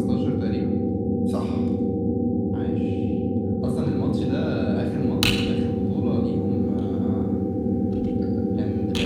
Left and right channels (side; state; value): both; identical; correlation 1.00